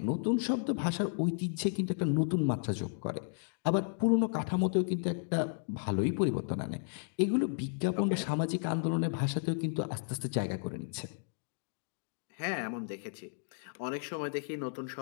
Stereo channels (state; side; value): silent; right; digital silence